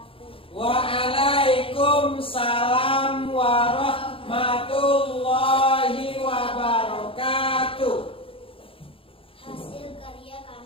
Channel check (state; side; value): late; right; 0.26 ms